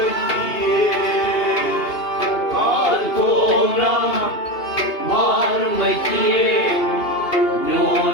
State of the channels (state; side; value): late; right; 2.8 ms